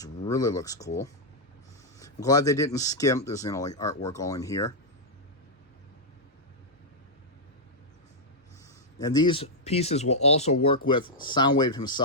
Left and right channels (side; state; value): both; normal; correlation -0.06